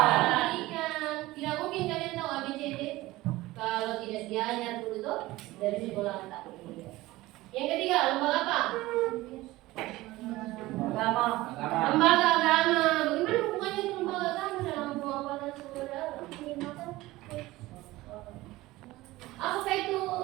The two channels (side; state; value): left; quieter; 18.5 dB